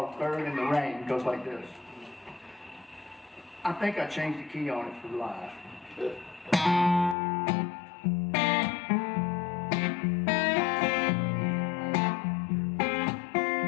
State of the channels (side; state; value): right; drops out; at 7.2 s